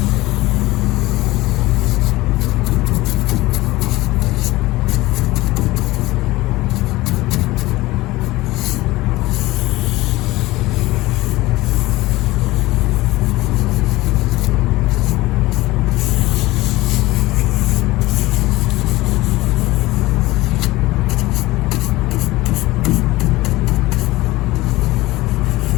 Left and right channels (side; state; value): right; quieter; 19.1 dB